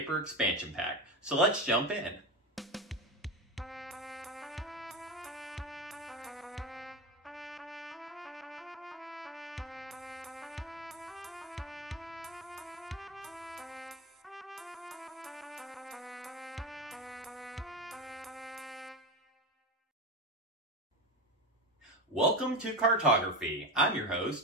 expansion pack. So let's jump in. Welcome to Cartography. I'm your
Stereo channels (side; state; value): both; normal; correlation 0.20